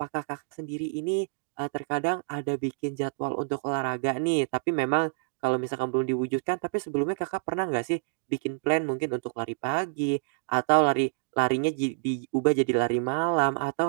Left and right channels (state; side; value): silent; left; digital silence